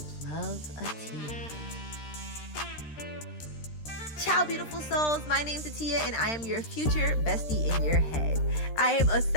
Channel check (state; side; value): late; right; 13 ms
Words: Loveatiya. Ciao, beautiful souls. My name's Atiya, and I am your future bestie in your head. I am a